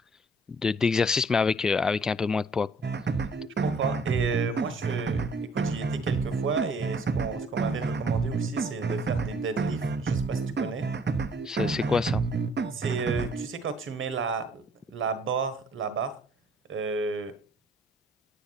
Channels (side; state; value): both; normal; correlation 0.59